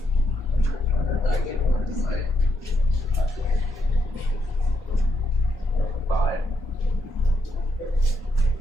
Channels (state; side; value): normal; both; correlation 0.78